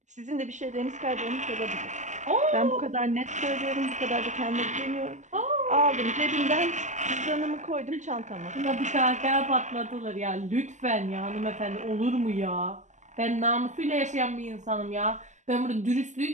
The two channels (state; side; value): late; left; 0.35 ms